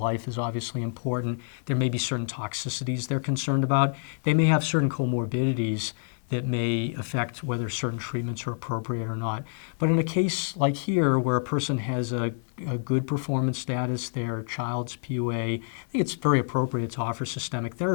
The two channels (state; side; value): silent; right; digital silence